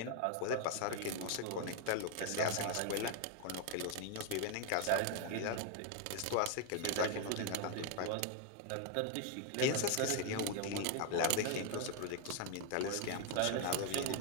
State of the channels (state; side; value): different; both; correlation 0.00